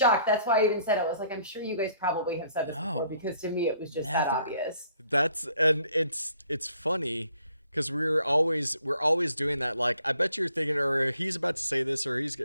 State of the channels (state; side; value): inverted; both; correlation -0.63